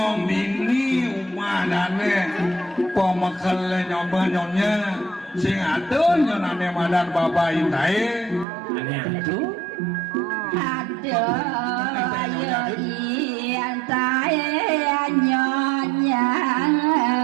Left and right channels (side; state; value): left; drops out; at 8.5 s